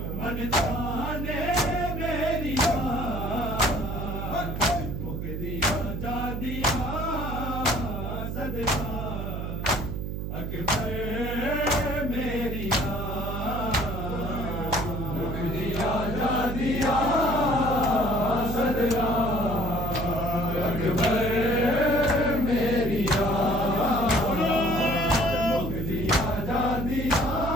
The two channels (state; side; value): noise; right; hum, 4 dB below the sound